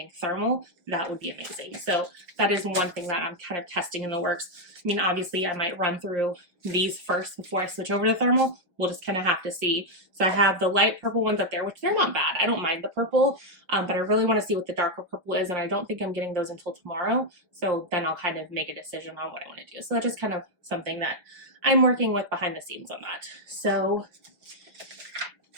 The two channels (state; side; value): late; left; 5.5 ms